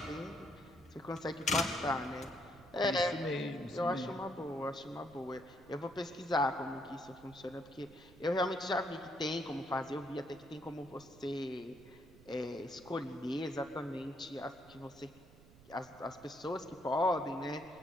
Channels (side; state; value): right; noise; rumble, 22 dB below the sound